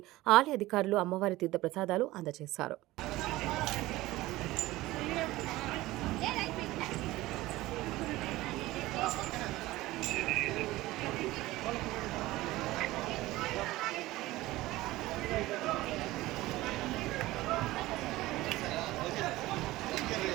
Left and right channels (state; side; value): quieter; left; 18.0 dB